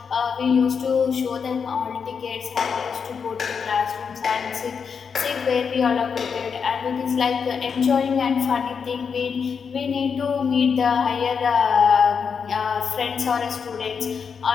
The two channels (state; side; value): quieter; right; 6.2 dB